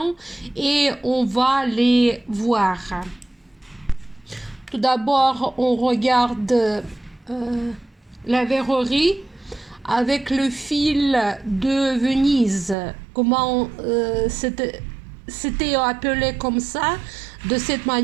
et on va les voir. Tout d'abord, on regarde la verrerie avec le fil de Venise. Comment c'était appelé comme ça, de cette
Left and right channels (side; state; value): left; drops out; at 12.8 s